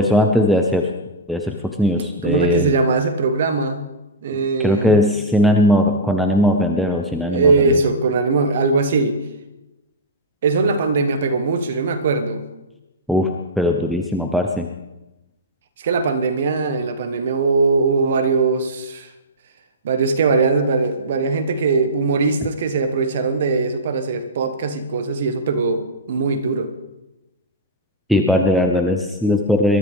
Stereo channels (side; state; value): both; normal; correlation -0.09